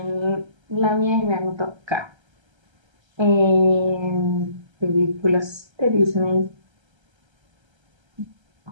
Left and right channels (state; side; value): late; left; 1.3 ms